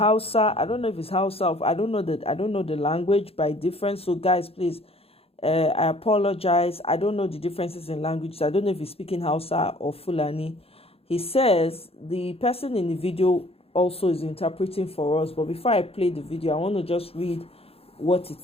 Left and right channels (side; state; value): right; late; 0.28 ms